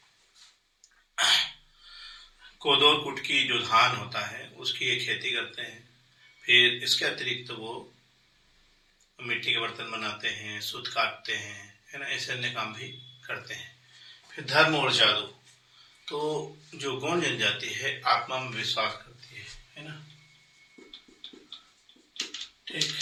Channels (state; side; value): identical; both; correlation 1.00